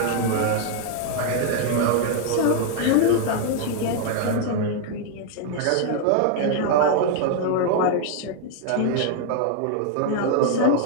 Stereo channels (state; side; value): different; both; correlation 0.00